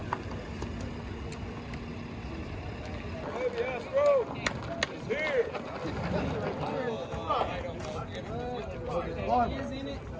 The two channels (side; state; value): both; identical; correlation 1.00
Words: Yes, bro. It's here.